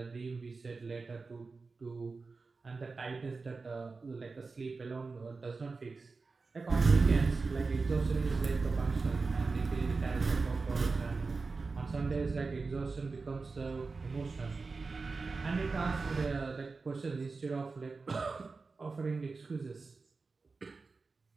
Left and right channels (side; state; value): left; quieter; 4.1 dB